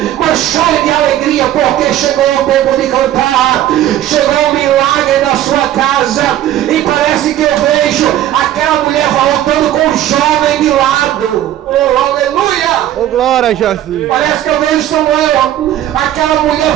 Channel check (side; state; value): left; quieter; 12.5 dB